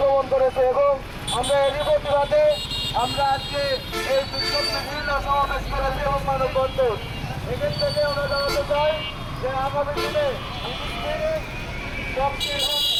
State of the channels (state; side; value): identical; both; correlation 1.00